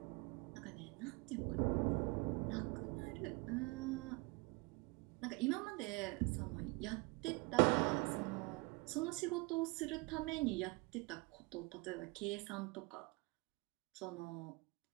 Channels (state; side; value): quieter; left; 26.9 dB